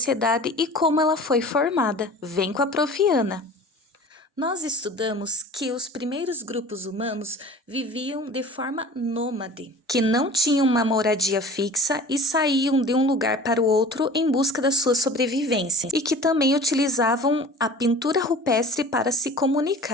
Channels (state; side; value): normal; both; correlation 0.42